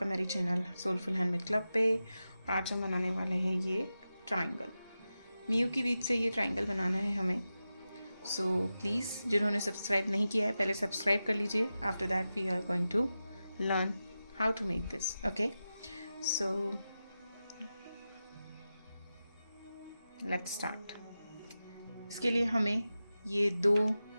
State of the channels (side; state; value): both; inverted; correlation -0.92